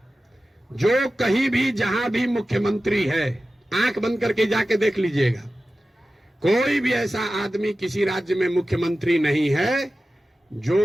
जो कहीं भी जहां भी मुख्यमंत्री है, आंख बंद करके जाके देख लीजिएगा, कोई भी ऐसा आदमी किसी राज्य में मुख्यमंत्री नहीं है जो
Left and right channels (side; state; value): both; normal; correlation 0.95